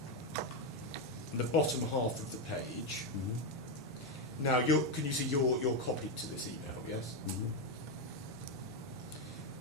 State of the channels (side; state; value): right; noise; hum, 26 dB below the sound